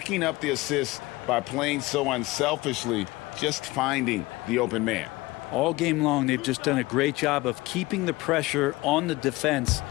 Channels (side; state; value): right; quieter; 20.7 dB